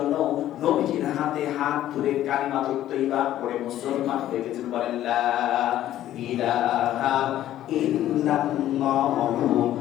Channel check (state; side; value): quieter; right; 12.8 dB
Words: নবীজির হাতে হাত ধরে কালিমাতুত তাইয়্যিবা পড়ে মুসলমান হয়ে গেছেন। বলেন লা ইলাহা ইল্লাল্লাহু